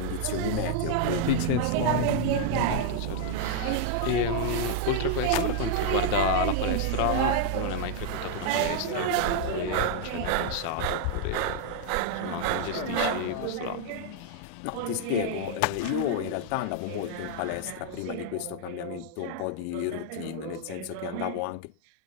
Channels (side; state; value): both; different; correlation -0.01